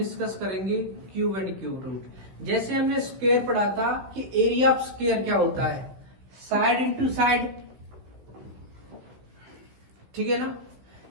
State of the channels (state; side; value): late; left; 16 ms